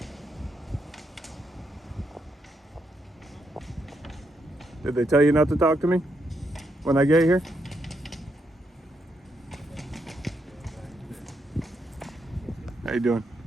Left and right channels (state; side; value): normal; both; correlation 0.79